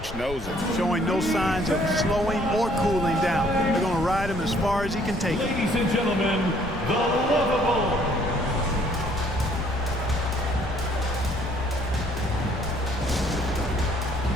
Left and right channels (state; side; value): noise; left; rumble, 10 dB below the sound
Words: knows it. Showing no signs of slowing or cooling down. They're going to ride him as far as he can take it. Ladies and gentlemen, the lovable.